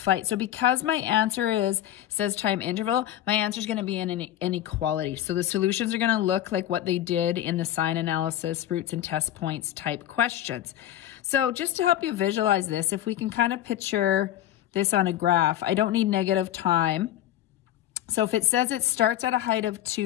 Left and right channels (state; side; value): quieter; right; 12.6 dB